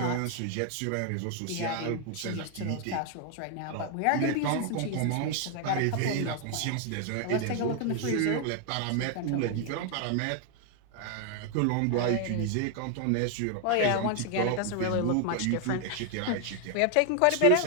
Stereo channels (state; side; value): different; both; correlation 0.00